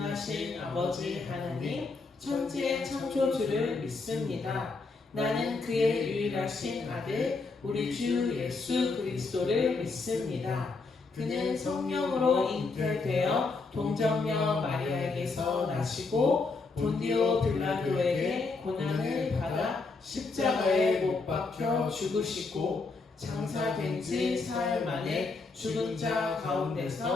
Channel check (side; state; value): right; quieter; 4.0 dB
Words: 아버지 하나님 천지의 창조주를 믿습니다. 나는 그의 유일하신 아들 우리 주 예수 그리스도를 믿습니다. 그는 성령으로 잉태되어 동정녀 마리아에게서 나시고 본디오 빌라도에게 고난을 받아 십자가에 못 박혀 죽으시고 장사된 지 사흘 만에 죽은 자